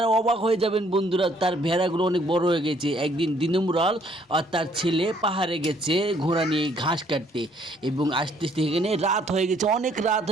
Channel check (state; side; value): normal; both; correlation 0.64